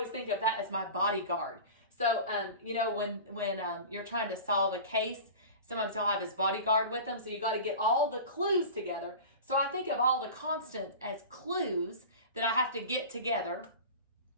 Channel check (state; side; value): inverted; both; correlation -0.34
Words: think of that as my bodyguard. So, you know, when you're trying to solve a case, sometimes he'll have his bodyguard with him, so you got to get all the clues together. So I think of all the constants as clues that I have to get together.